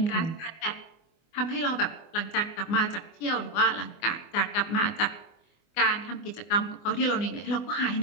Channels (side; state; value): right; late; 24 ms